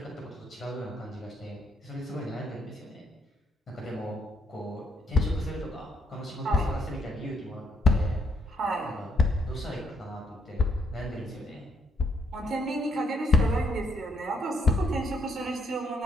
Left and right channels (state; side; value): normal; both; correlation 0.74